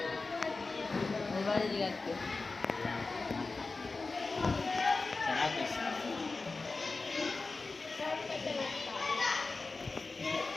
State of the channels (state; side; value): quieter; right; 3.8 dB